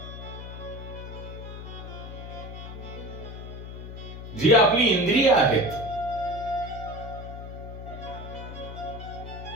जी आपली इंद्रिय आहेत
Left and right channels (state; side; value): noise; left; hum, 10 dB below the sound